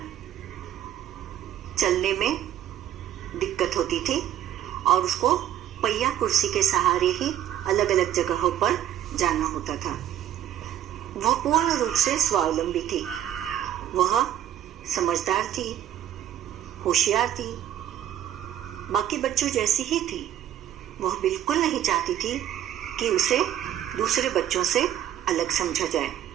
चलने में दिक्कत होती थी और उसको पहिया कुर्सी के सहारे ही अलग अलग जगहों पर जाना होता था। वह पूर्ण रूप से स्वावलंबी थी। वह समझदार थी, होशियार थी, बाकी बच्चों जैसी ही थी। वह बिल्कुल नहीं चाहती थी कि उसे दूसरे बच्चों से अलग समझा जाए।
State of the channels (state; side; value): quieter; left; 11.2 dB